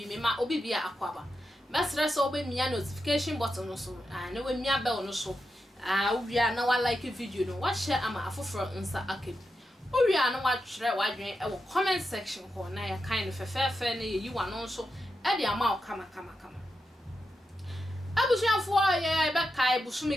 me ma obi bia akwaba mesre so obi mia notification button no so na we mia bell no so owia na wa like video no wa share ama afoforo nsa akeb owia na wa twere wa dwen e wo comment section ho na ya kind fefefe na yi wa no so e de ama o kama abusuafo ye be kai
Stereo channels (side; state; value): both; normal; correlation 0.87